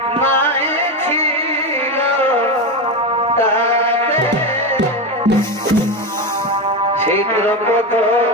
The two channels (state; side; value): normal; both; correlation 0.15